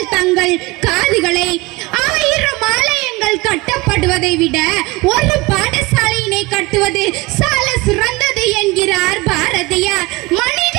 தங்கள் காதுகளை. 1000 ஆலயங்கள் கட்டப்படுவதை விட ஒரு பாடசாலையினை கட்டுவது சால சிறந்தது என்கிறார் பாரதியார்.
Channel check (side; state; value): left; quieter; 22.9 dB